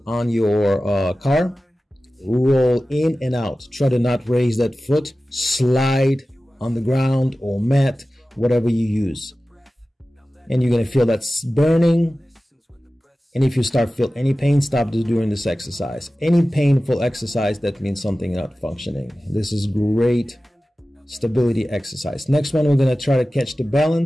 on your car. Roll in and out. Try to not raise that foot. Slide on the ground or mat, whatever you use. And you're going to feel that's burning. And if you start feel any pain, stop doing this exercise. Any painful exercise, that means something not functioning. This is great stability exercise. Next one, we're going to try to catch the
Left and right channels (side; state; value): both; normal; correlation 0.96